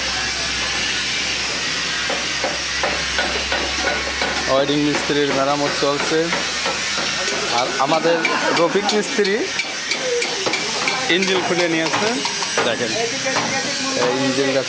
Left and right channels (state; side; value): identical; both; correlation 1.00